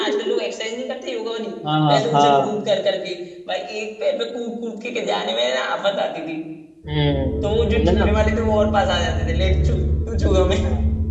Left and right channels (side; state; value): both; identical; correlation 1.00